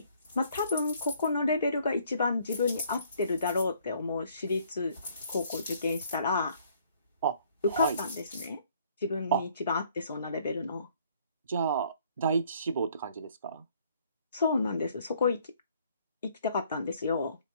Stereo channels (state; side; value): inverted; both; correlation -0.62